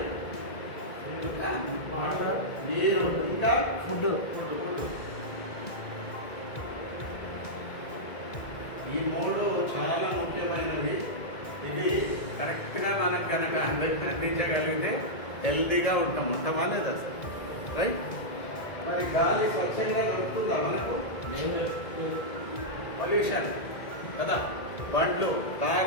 నీరు, ఇంకా ఫుడ్. ఈ మూడు చాలా ముఖ్యమైనవి. ఇది కరెక్ట్గా మనకు కనుక అందించగలిగితే హెల్తీగా ఉంటాం మొత్తం అనేది అసలు, రైట్? మరి గాలి స్వచ్ఛంగా దొరుకుతుందా మనకు? పొల్యూషన్ కదా, బండ్లు,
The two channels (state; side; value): late; right; 1.9 ms